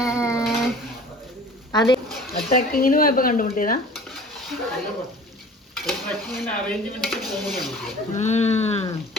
അതെ, ട്രക്കിങ്ങിന് പോയപ്പോ കണ്ടുമുട്ടിയതാ.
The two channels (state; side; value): normal; both; correlation 0.45